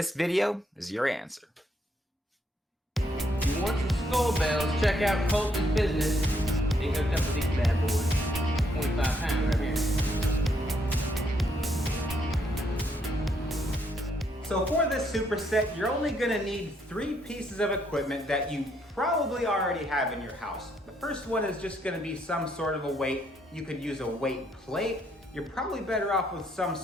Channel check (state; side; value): normal; both; correlation 0.73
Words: video is your answer. If you want some skull bells, check out Colton's Business. They hooked up with these bad boys. 25 pounds right here. So for this superset, you're only gonna need 3 pieces of equipment that you probably already have in your house. The first one is just gonna be some sort of a weight. You could use a weight plate. You're probably better off with some